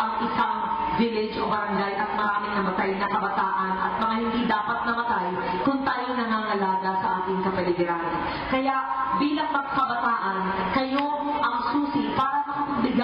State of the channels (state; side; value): identical; both; correlation 1.00